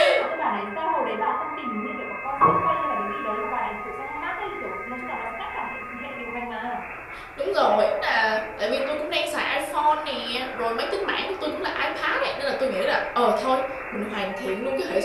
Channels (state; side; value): identical; both; correlation 1.00